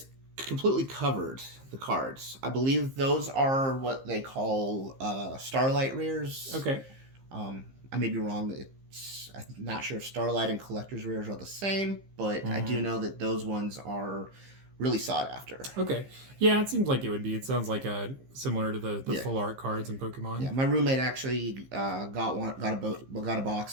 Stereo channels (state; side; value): late; left; 15 ms